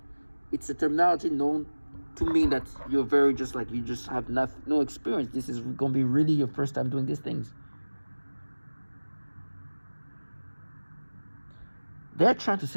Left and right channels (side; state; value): both; inverted; correlation -1.00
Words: It's a terminology known to mean that you're very just you just have no experience. This is going to be really your first time doing these things. They're trying to